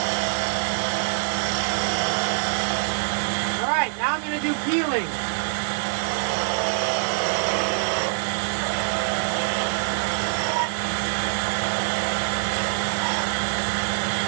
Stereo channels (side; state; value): left; silent; digital silence